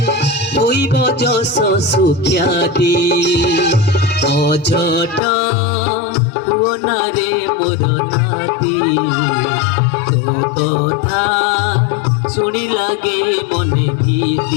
ହୋଇବ ଯଶ ସୁଖ୍ୟାତି অঝট হুও না রে মোর নাতি তো কথা শুনি লাগে মনে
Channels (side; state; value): right; drops out; at 5.2 s